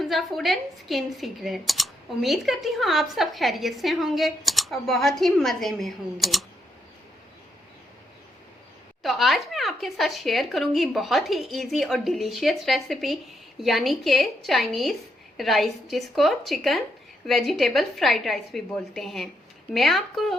food and skin secret. उम्मीद करती हूँ आप सब खैरियत से होंगे और बहुत ही मज़े में होंगे। तो आज मैं आपके साथ शेयर करूँगी बहुत ही इजी और डिलीशियस रेसिपी, यानी कि चाइनीज़ राइस, जिसको चिकन वेजिटेबल फ्राइड राइस भी बोलते हैं। मैं आपको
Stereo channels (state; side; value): normal; both; correlation 0.78